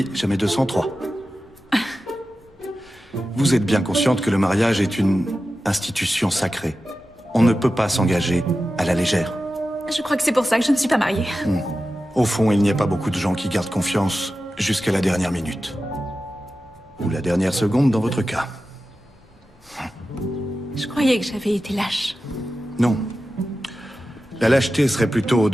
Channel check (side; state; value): both; normal; correlation 0.93